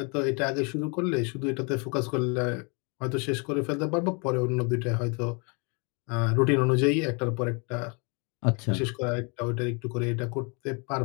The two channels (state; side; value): quieter; right; 33.2 dB